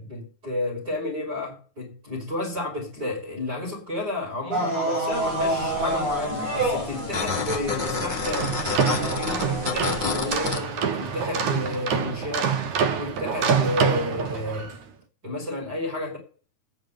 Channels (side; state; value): left; late; 9.5 ms